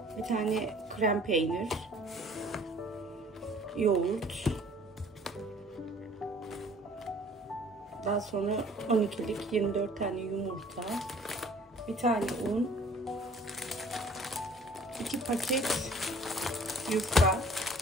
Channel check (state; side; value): normal; both; correlation 0.53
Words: bir tane krem peynir, yoğurt, daha sonra 12'lik 24 tane yumurta, bir tane un, 2 paket yufka.